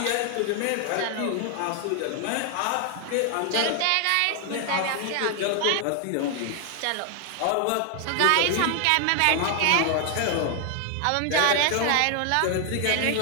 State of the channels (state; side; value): different; both; correlation 0.00